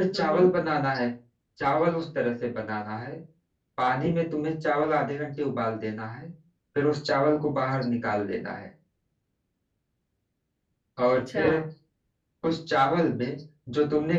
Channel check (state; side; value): identical; both; correlation 1.00